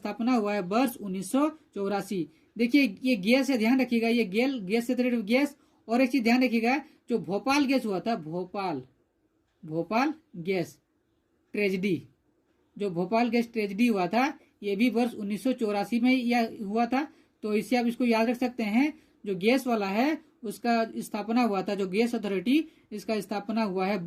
हुआ है वर्ष 1984। देखिए ये गैस है, ध्यान रखिएगा, ये गैस से रिलेटेड गैस। और एक चीज ध्यान रखिएगा, जो भोपाल गैस हुआ था, भोपाल गैस ट्रेजेडी, जो भोपाल गैस ट्रेजेडी हुआ था, ये भी वर्ष 1984 में यह हुआ था। तो इससे आप इसको याद रख सकते हैं, जो गैस वाला है उसका स्थापना हुआ था, जो गैस अथॉरिटी, इसका स्थापना हुआ है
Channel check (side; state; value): both; identical; correlation 1.00